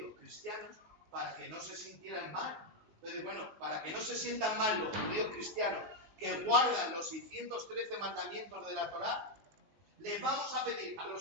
cristianos, para que no se sintieran mal. Entonces, bueno, para que no se sientan mal los judíos cristianos que guardan los 613 mandamientos de la Torá, les vamos a pedir a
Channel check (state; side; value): late; left; 19 ms